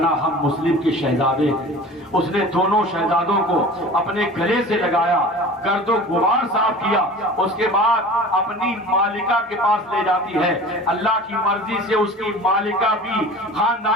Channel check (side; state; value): both; normal; correlation 0.39